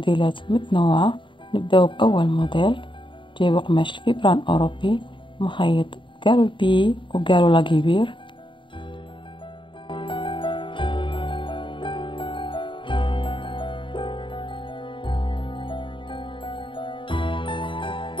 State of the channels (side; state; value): right; late; 0.24 ms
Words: متنوعة. نبدأ بأول موديل، جايب قماش الفيبران أوروبي مخيط قالوا البي وقالوا لاكيبير.